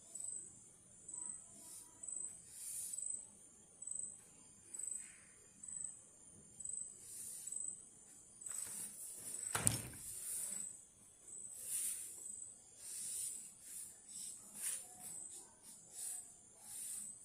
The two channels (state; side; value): identical; both; correlation 1.00